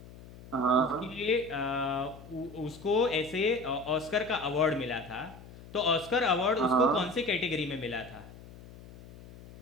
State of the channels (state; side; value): noise; left; hum, 18 dB below the sound